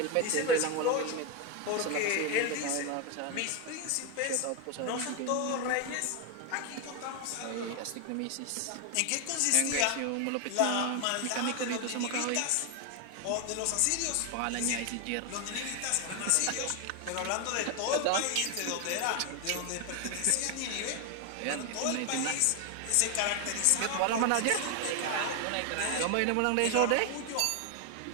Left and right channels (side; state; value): both; different; correlation 0.01